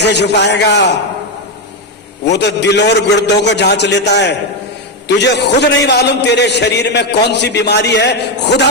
छुपाएगा? वो तो दिल और गुर्दों को जांच लेता है। तुझे खुद नहीं मालूम तेरे शरीर में कौन सी बीमारी है, खुदा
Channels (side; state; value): both; normal; correlation 0.07